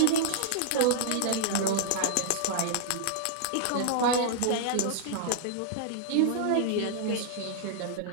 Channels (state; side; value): different; both; correlation -0.01